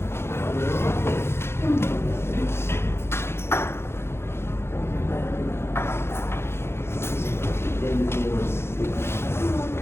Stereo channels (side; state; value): right; late; 0.12 ms